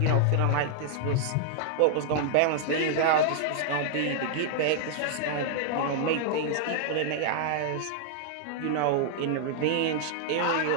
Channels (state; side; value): different; both; correlation -0.01